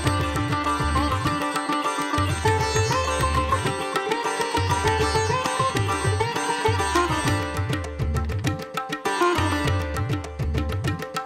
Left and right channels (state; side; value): identical; both; correlation 1.00